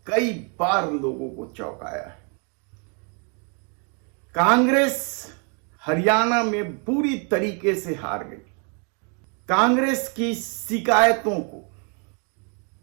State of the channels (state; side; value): quieter; left; 37.8 dB